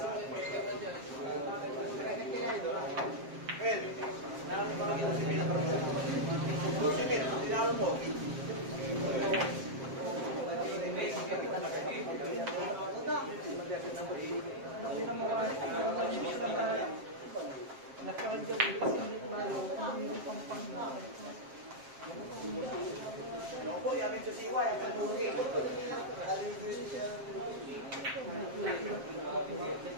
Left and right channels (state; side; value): late; left; 7.5 ms